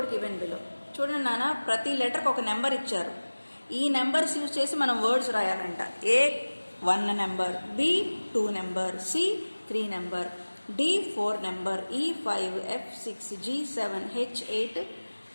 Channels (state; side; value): inverted; both; correlation -1.00